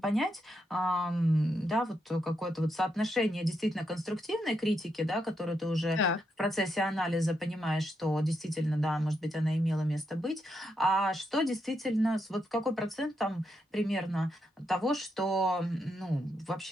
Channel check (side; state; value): both; normal; correlation 0.81